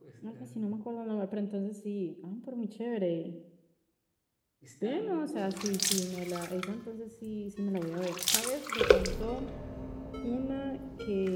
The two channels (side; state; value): both; identical; correlation 1.00